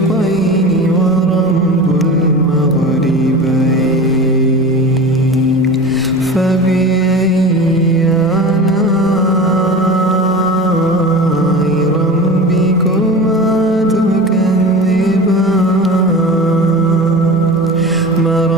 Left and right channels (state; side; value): normal; both; correlation 0.32